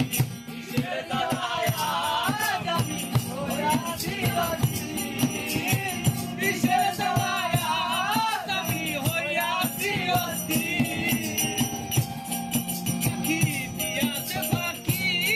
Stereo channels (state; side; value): identical; both; correlation 1.00